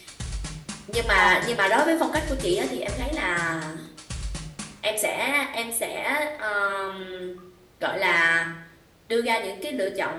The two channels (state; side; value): identical; both; correlation 1.00